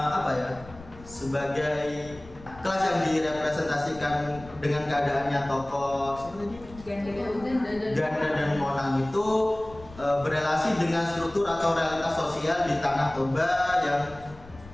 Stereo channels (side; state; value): left; noise; rumble, 19 dB below the sound